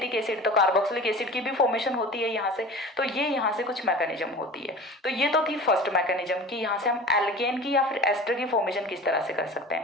एसिड, तो कार्बोक्सिलिक एसिड की भी फॉर्मेशन होती है यहाँ से। तो ये यहाँ से कुछ मैकेनिज्म होती है। तो ये तो थी फर्स्ट मैकेनिज्म कि यहाँ से हम एल्केन की या फिर एस्टर की फॉर्मेशन किस तरह से कर सकते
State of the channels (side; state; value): both; normal; correlation 0.37